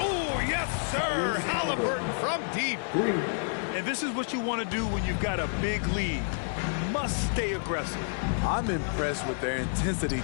yes, sir. Halliburton from deep. And this is what you want to do when you've got a big lead. You must stay aggressive. I'm impressed with their intensity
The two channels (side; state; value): right; silent; 58 dB below the other